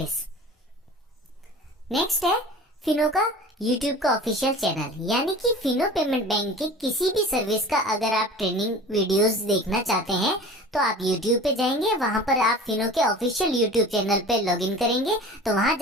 नेक्स्ट है फिनो का यूट्यूब का ऑफिशियल चैनल, यानी कि फिनो पेमेंट बैंक की किसी भी सर्विस का अगर आप ट्रेनिंग वीडियोस देखना चाहते हैं तो आप यूट्यूब पे जाएंगे, वहां पर आप फिनो के ऑफिशियल यूट्यूब चैनल पे लॉगिन करेंगे। तो वहां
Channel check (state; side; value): normal; both; correlation 0.39